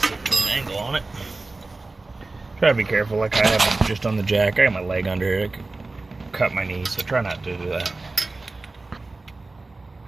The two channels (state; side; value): quieter; left; 3.3 dB